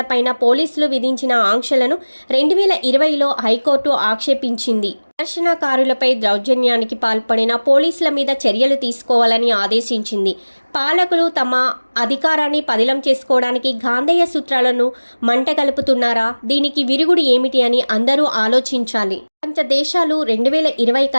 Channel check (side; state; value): both; inverted; correlation -1.00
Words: పోలీసులు విధించిన ఆంక్షలను 2020లో హైకోర్టు ఆక్షేపించింది. ప్రదర్శనకారులపై దౌర్జన్యానికి పాల్పడిన పోలీసుల మీద చర్యలు తీసుకోవాలని ఆదేశించింది. పాలకులు తమ అధికారాన్ని పదిలం చేసుకోవడానికి గాంధేయ సూత్రాలను మంటగలుపుతున్నారా? దీనికి విరుగుడు ఏమిటి అని అందరూ ఆలోచించాలి. ప్రపంచ దేశాలు 2020